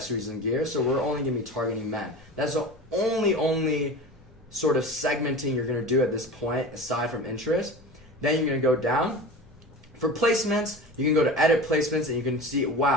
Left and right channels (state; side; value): normal; both; correlation 0.32